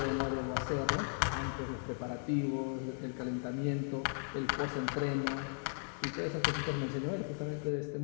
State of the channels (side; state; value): right; silent; 53 dB below the other